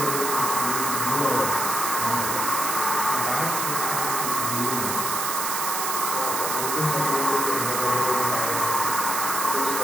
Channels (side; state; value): right; noise; hiss, 1 dB below the sound